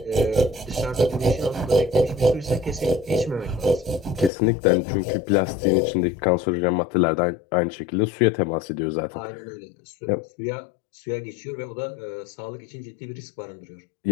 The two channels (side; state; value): right; drops out; at 4.3 s